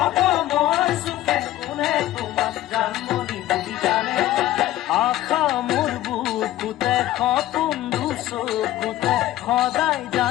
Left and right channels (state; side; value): quieter; right; 14.5 dB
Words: অসমৰ চুকে কোনে তোমাক জানমণি বুলি জানে আশা মোৰ বুকুতে সপোন চকুতে সদায়